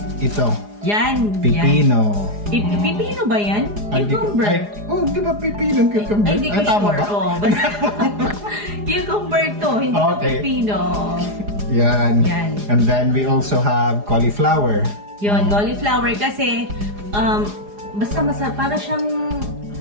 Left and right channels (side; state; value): left; late; 4.9 ms